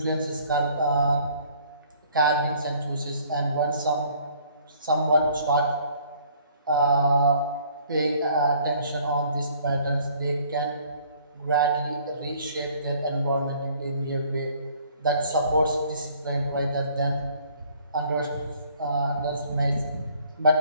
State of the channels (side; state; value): both; inverted; correlation -0.58